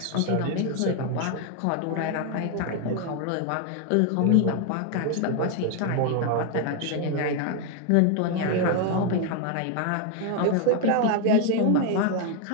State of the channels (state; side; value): different; both; correlation 0.01